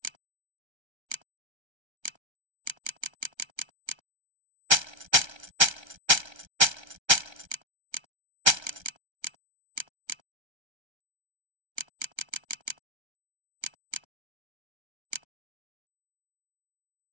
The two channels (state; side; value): late; left; 1.3 ms